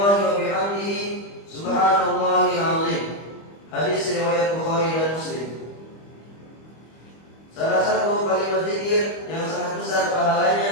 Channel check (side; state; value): right; late; 25 ms